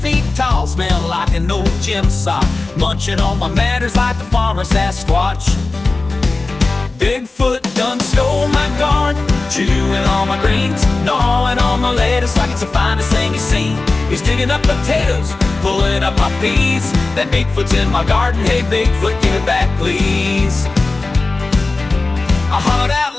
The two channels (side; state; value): right; quieter; 3.4 dB